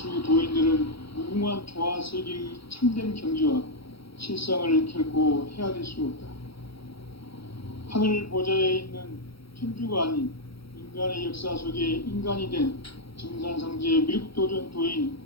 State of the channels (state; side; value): late; right; 0.75 ms